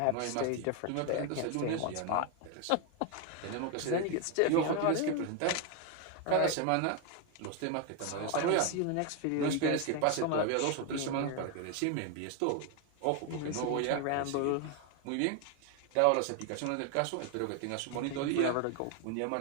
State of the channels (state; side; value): different; both; correlation 0.01